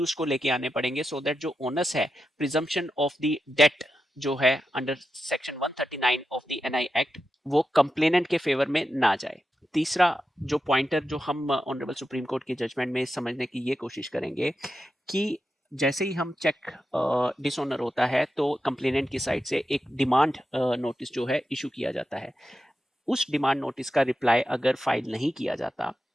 को लेके आने पड़ेंगे सो दैट जो ओनस है प्रिजम्पशन ऑफ द डेट जो है under section 139 of the NI act वो कंप्लेनेंट के फेवर में ना जाए। तीसरा जो पॉइंटर जो हम ऑनरेबल सुप्रीम कोर्ट की जजमेंट में समझने की ये कोशिश करेंगे कि जैसे ही हम चेक डिसऑनर होता है तो कंप्लेनेंट की साइड से एक डिमांड नोटिस जो है इशू किया जाता है। उस डिमांड नोटिस का रिप्लाई अगर फाइल नहीं किया जाता,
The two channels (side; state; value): both; normal; correlation 0.89